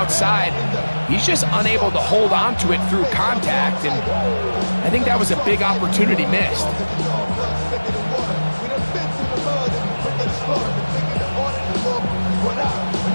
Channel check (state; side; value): inverted; both; correlation -1.00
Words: He's just unable to hold on to it through contact, and I think that was a big opportunity missed.